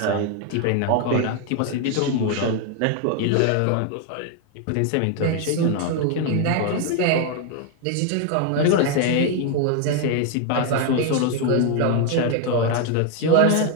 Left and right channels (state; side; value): different; both; correlation 0.00